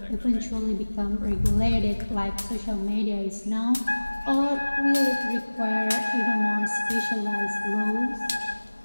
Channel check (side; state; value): both; inverted; correlation -1.00